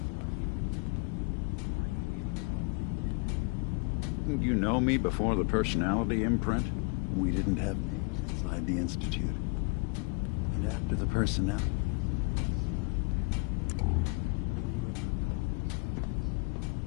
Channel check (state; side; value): quieter; right; 31.4 dB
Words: question. Why do you even call me Nick? Didn't you know me before the personality imprint? We didn't have names inside the Institute. And after the personality experiments started, the only name you ever called yourself was